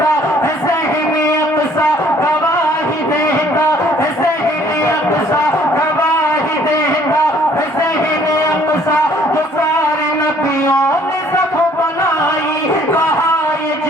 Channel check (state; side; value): normal; both; correlation 0.59